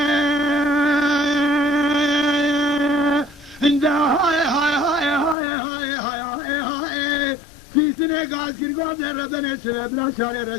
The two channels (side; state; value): right; drops out; at 5.4 s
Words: فیسنه گاز گرگاز ربن سبب نشاره